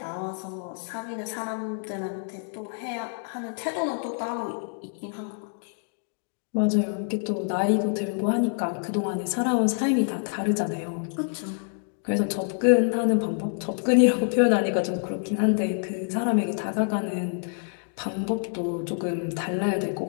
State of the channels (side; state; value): right; silent; 60 dB below the other